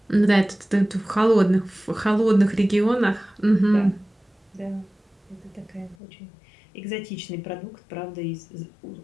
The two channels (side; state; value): right; drops out; at 6.0 s